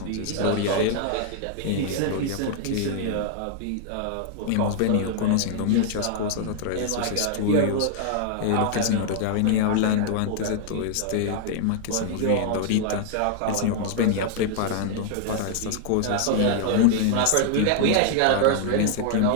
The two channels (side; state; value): both; different; correlation -0.01